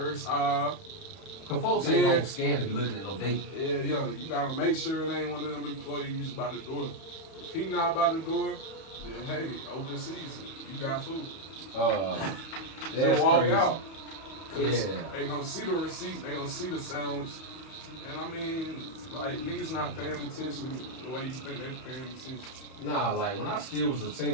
aisle. Cause folks ain't gonna scan to be looking at no date. Yeah, you gotta make sure it ain't one of them employees by the door. If he not by the door, then hey, open season, you got food. That's Just walk crazy. out. Cause Yeah. they gonna see the receipt, they gonna see the sandwich. And I mean, like, niggas not paying attention the way you think they paying attention. Nah, like when I still was a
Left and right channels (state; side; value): late; right; 31 ms